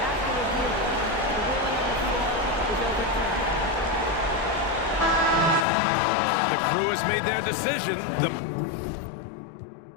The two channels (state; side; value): drops out; right; at 5.7 s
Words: The crew has made their decision. The